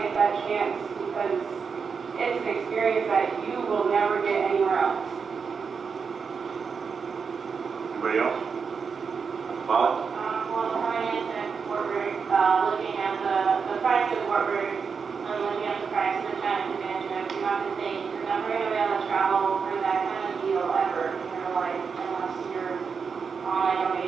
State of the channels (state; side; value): quieter; left; 5.7 dB